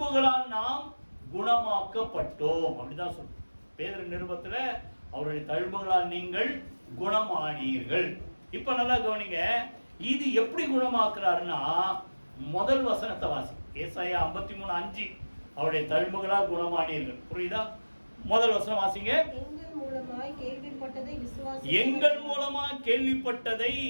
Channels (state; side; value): inverted; both; correlation -1.00